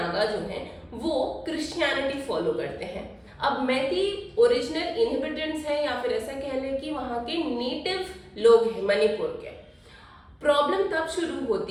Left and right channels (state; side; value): identical; both; correlation 1.00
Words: जो हैं वो क्रिश्चियनिटी फॉलो करते हैं। अब मैती ओरिजिनल इनहेबिटेंट्स हैं, या फिर ऐसा कह लें कि वहाँ के नेटिव लोग हैं मणिपुर के। प्रॉब्लम तब शुरू